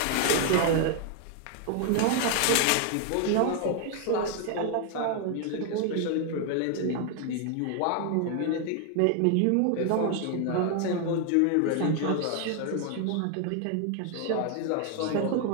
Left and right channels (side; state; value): both; different; correlation 0.00